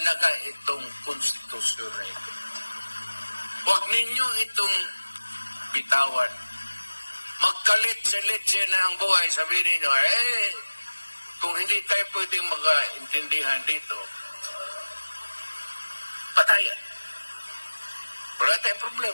itong konstitusyon na ito. Huwag ninyo itong bitawan. Magkalit-salit na ang buhay. Sabihin ninyo, kung hindi tayo pwedeng mag-intindihan dito, patayan. Wala tayong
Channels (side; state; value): both; inverted; correlation -1.00